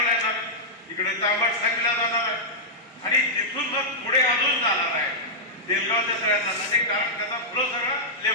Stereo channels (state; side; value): normal; both; correlation -0.10